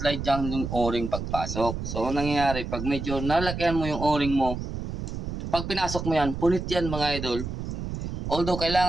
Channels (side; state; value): right; noise; rumble, 5 dB below the sound